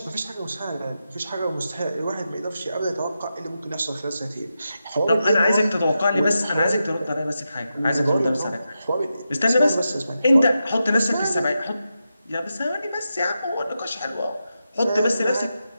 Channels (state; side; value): inverted; both; correlation -0.88